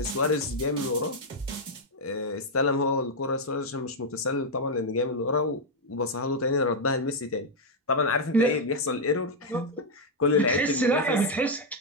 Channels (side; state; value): both; normal; correlation 0.00